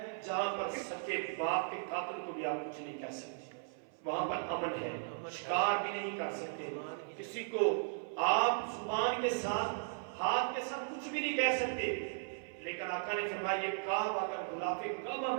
جہاں پر سچے باپ کے قاتل کو بھی آپ کچھ نہیں کہہ سکتے. وہاں پر امن ہے, شکار بھی نہیں کر سکتے. کسی کو آپ زبان کے ساتھ ہاتھ کے ساتھ کچھ بھی نہیں کہہ سکتے. لیکن آقا نے فرمایا یہ کعبہ اگر غلاف کعبہ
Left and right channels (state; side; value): silent; left; 53 dB below the other